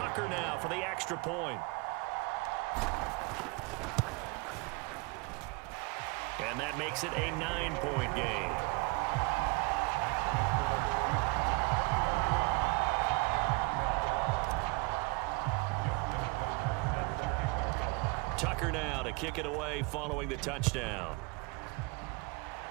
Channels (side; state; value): left; quieter; 27.4 dB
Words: now for the extra point. And that makes it a 9-point game. Tucker now to kick it away following the touchdown.